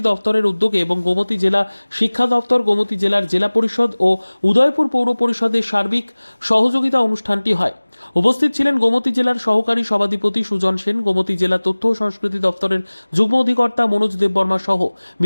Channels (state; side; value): inverted; both; correlation -1.00